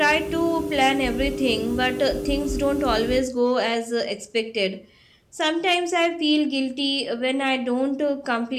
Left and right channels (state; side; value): identical; both; correlation 1.00